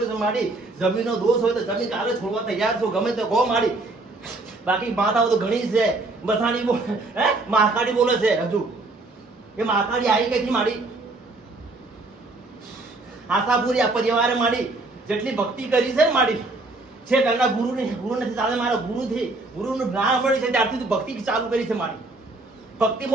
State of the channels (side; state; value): left; quieter; 3.1 dB